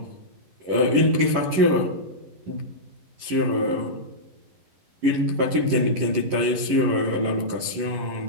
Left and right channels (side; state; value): left; late; 11 ms